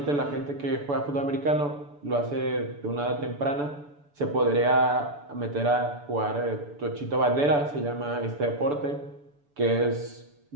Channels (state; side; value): late; left; 6.9 ms